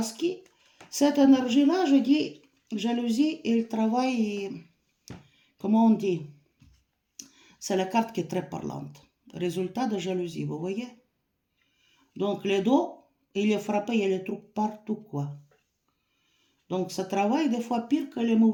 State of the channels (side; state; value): both; identical; correlation 1.00